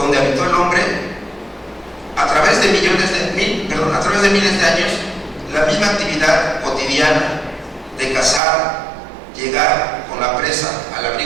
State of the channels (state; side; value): drops out; left; at 8.4 s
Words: habitó el hombre, a través de miles de años, la misma actividad cotidiana de cazar, llegar con la presa al